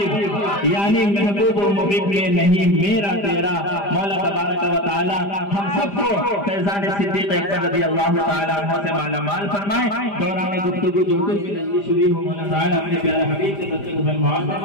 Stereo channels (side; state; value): right; late; 5.0 ms